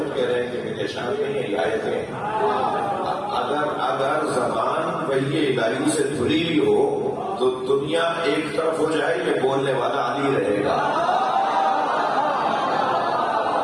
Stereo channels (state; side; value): identical; both; correlation 1.00